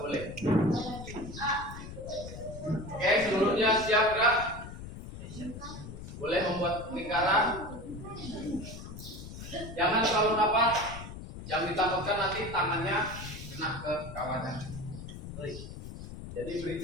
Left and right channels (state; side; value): noise; left; rumble, 11 dB below the sound